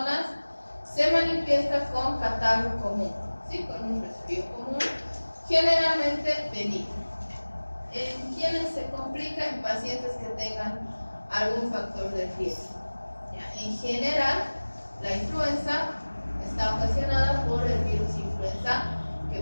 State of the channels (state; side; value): inverted; both; correlation -1.00